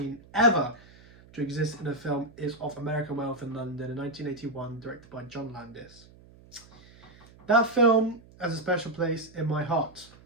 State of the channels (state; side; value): noise; right; hum, 24 dB below the sound